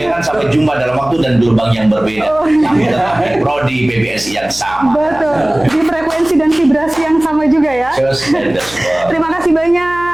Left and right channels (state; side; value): noise; right; hum, 19 dB below the sound